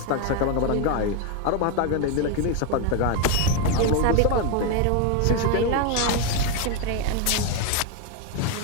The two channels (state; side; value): different; both; correlation 0.01